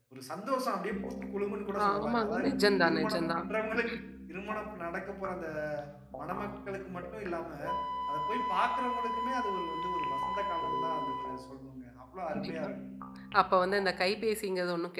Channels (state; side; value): identical; both; correlation 1.00